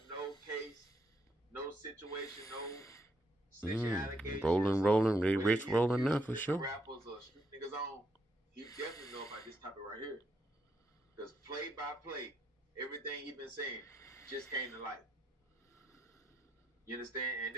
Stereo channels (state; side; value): normal; both; correlation 0.77